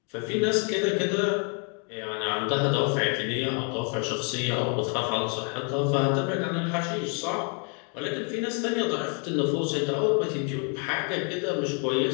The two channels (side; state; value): right; quieter; 38.3 dB